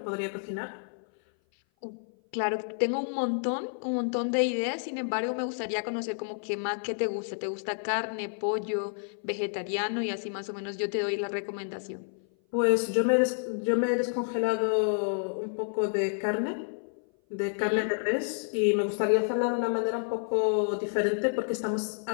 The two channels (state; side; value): silent; right; 56 dB below the other